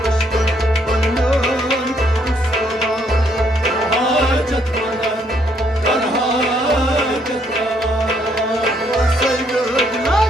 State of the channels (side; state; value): both; normal; correlation 0.70